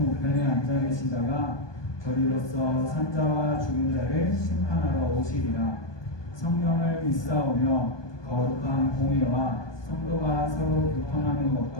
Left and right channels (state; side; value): late; right; 1.2 ms